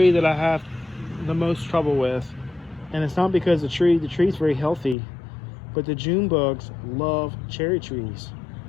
that I have the most trouble with, and it's not because the tree's very healthy, but the June bugs love cherry trees.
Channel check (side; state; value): right; drops out; at 5.0 s